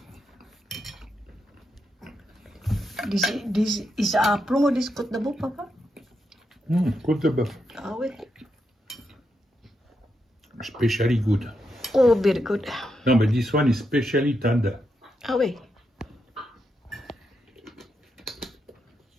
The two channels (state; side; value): normal; both; correlation 0.83